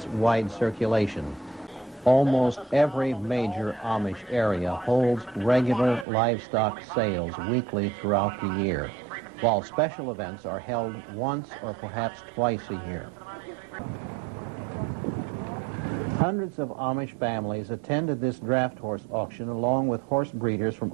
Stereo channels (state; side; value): drops out; left; at 6.1 s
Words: wide circulation. Almost every major Amish area holds regular livestock sales weekly throughout the year, while special events are held once or perhaps twice a year. Hundreds of Amish families attended this draft horse auction along with horse breeders from